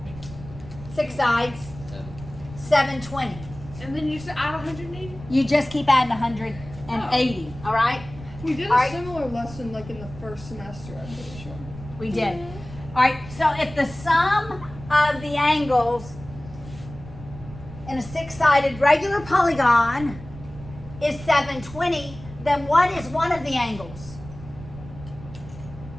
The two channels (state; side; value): noise; right; rumble, 15 dB below the sound